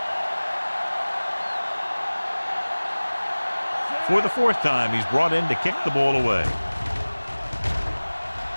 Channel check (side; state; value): both; inverted; correlation -1.00